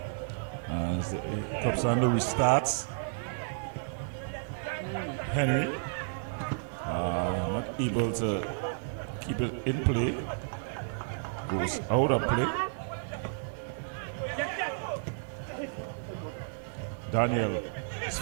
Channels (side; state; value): left; silent; digital silence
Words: As the Club Sando restarts. Henry not able to keep it in play. Goes out of play. Daniel is